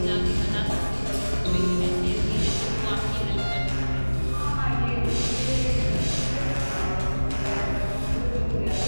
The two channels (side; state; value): both; inverted; correlation -1.00